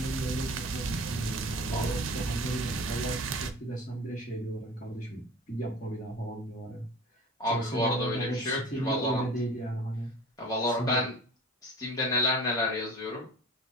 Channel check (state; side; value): normal; both; correlation 0.38